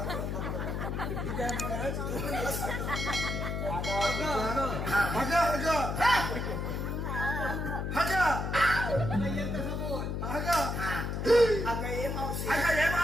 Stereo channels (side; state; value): left; noise; hum, 2 dB below the sound